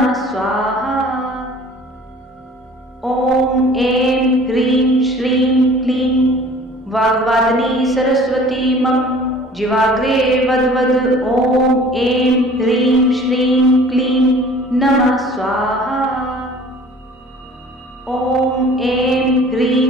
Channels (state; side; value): normal; both; correlation 0.48